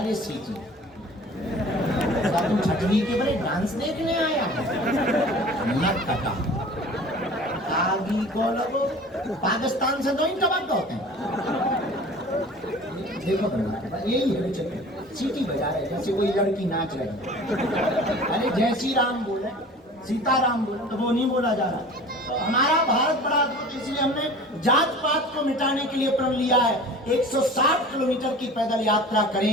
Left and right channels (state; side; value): normal; both; correlation 0.42